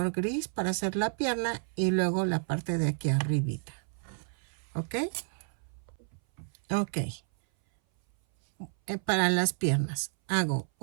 gris para hacer la pierna y luego la parte de aquí arribita. ¿Ok? Ok. Para las piernas hago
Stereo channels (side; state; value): left; silent; 57 dB below the other